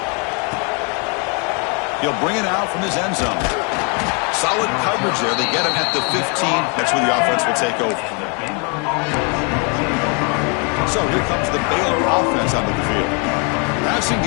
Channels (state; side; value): quieter; right; 35.2 dB